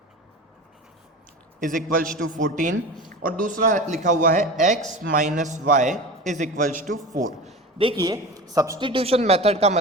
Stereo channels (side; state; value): both; normal; correlation 0.31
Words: is equals to 14 और दूसरा लिखा हुआ है x minus y is equals to 4। देखिए, सब्स्टिट्यूशन मेथड का